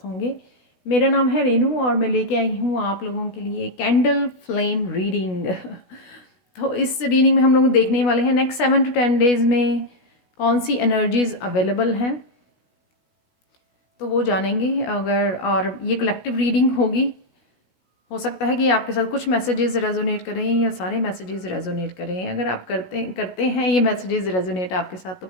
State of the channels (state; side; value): late; right; 16 ms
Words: होंगे। मेरा नाम है रेनू और मैं लेके आई हूँ आप लोगों के लिए कैंडल फ्लेम रीडिंग। तो इस रीडिंग में हम लोग देखने वाले हैं नेक्स्ट 7 to 10 डेज़ में कौन सी एनर्जीज अवेलेबल हैं, तो वो जानेंगे। अगर और ये कलेक्टिव रीडिंग होगी, हो सकता है कि आपके साथ कुछ मैसेजेस रेजोनेट करें या सारे मैसेजेस रेजोनेट करें। अगर आप करते करते हैं ये मैसेजेस रेजोनेट आपके साथ, तो